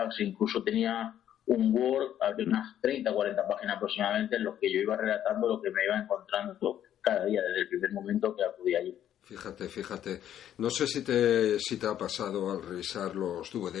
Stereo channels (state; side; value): quieter; right; 10.8 dB